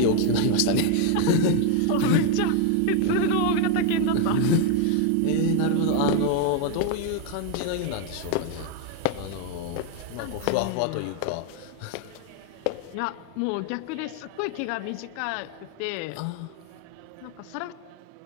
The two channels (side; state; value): both; different; correlation 0.01